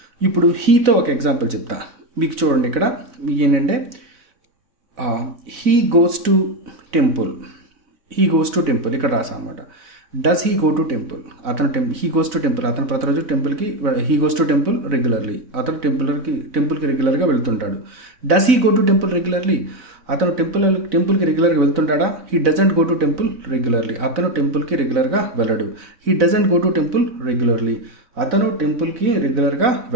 ఇప్పుడు హీతో ఒక ఎగ్జాంపుల్ చెప్తా. మీకు చూడండి, ఇక్కడ మీకు ఏంటంటే హీ గోస్ టు టెంపుల్, ఇక్కడ రాసా అనమాట. Does he go to temple, he goes to temple, అతను ప్రతిరోజు టెంపుల్కి, he goes to temple regularly, అతను టెంపుల్కి రెగ్యులర్గా వెళ్తుంటాడు. Does he go to temple regularly, అతను టెంపుల్కి రెగ్యులర్గా వెళ్తుంటాడా. He doesn't go to temple regularly, అతను టెంపుల్కి రెగ్యులర్గా వెళ్ళడు. He doesn't go to temple regularly, అతను టెంపుల్కి రెగ్యులర్గా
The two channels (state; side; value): late; left; 4.0 ms